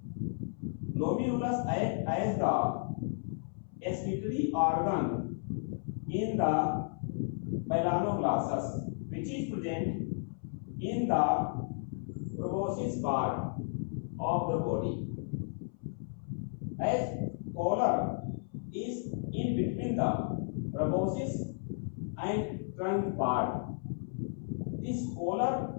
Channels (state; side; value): silent; right; 55 dB below the other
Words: Glomerulus acts as the excretory organ in the Balanoglossus, which is present in the proboscis part of the body. As collar is in between the proboscis and trunk part, this